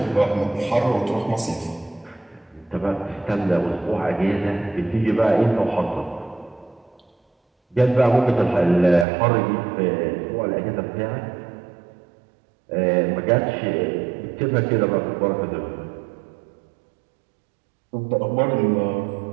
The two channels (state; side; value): drops out; left; at 9.1 s